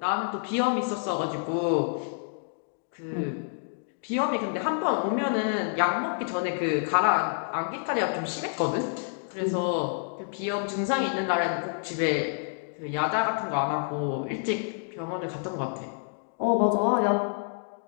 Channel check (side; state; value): right; silent; digital silence